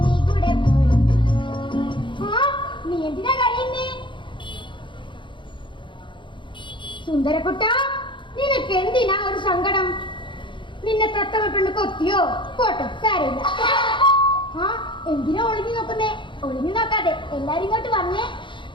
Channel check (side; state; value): right; late; 0.23 ms